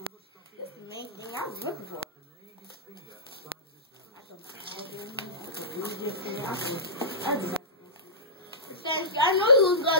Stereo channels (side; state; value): both; normal; correlation -0.20